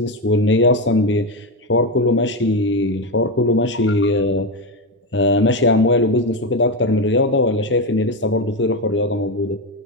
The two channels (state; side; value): normal; both; correlation 0.12